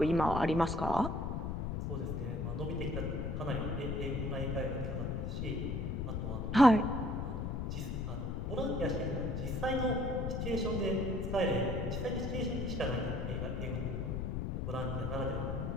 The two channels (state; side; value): noise; left; rumble, 2 dB below the sound